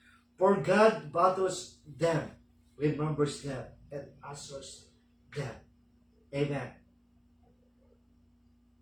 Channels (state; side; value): identical; both; correlation 1.00